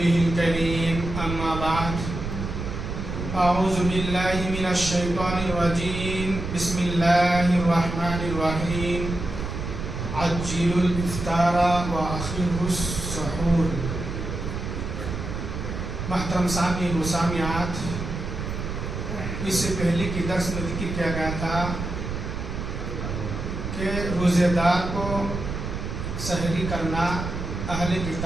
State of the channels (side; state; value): right; noise; rumble, 5 dB below the sound